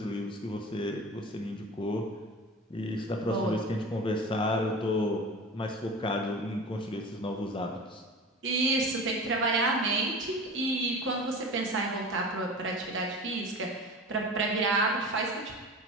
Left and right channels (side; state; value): both; normal; correlation 0.34